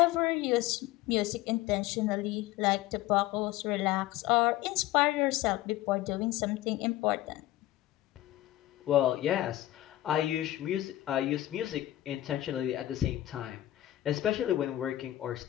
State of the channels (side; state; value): right; quieter; 15.1 dB